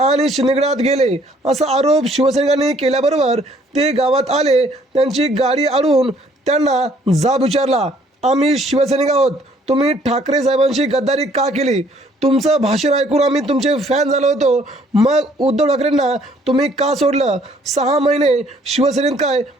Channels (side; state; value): both; normal; correlation 0.62